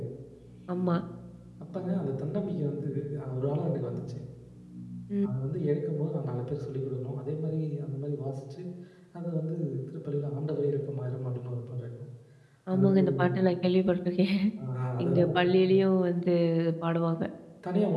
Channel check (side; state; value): both; identical; correlation 1.00